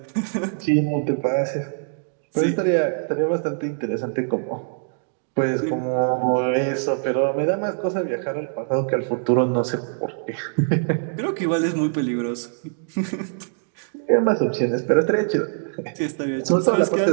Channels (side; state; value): left; silent; digital silence